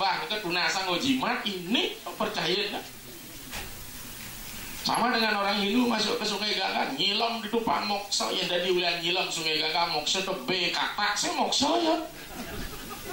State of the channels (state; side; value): identical; both; correlation 1.00